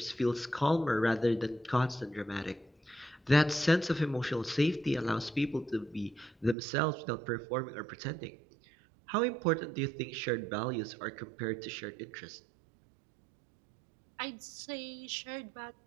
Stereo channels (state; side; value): drops out; left; at 6.6 s